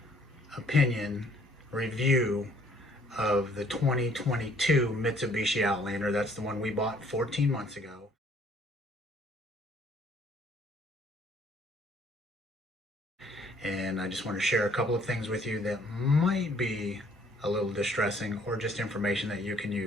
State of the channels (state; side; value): normal; both; correlation 0.61